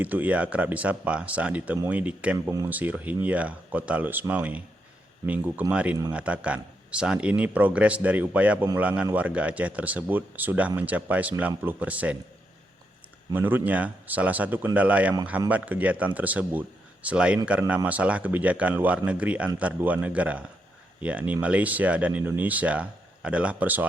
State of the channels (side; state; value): both; normal; correlation 0.81